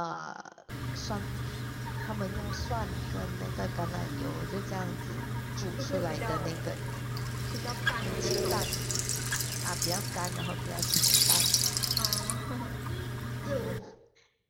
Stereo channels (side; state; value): both; identical; correlation 1.00